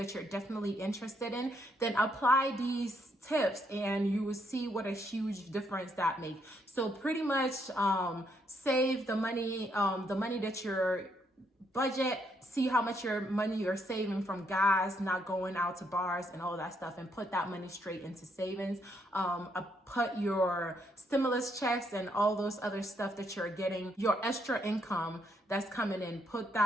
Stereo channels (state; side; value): normal; both; correlation 0.74